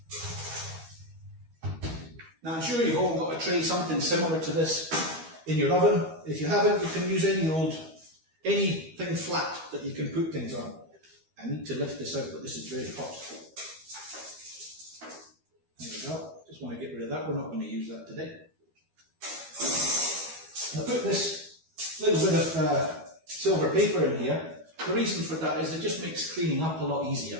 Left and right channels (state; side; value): late; left; 12 ms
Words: Now, I'm sure you've all got a tray, something similar to this in your oven. If you haven't, you can use anything flat that you can put things on. I need to lift this out, but this is very hot. There we go. Just want to get rid of that. We're not going to use that today. I put this little bit of silver paper in here. The reason for that is it just makes cleaning up a lot